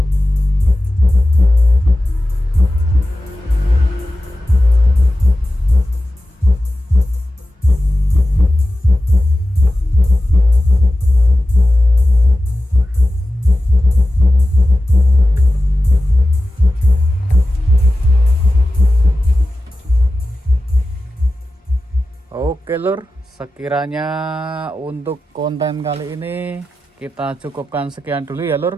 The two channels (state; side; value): normal; both; correlation 0.94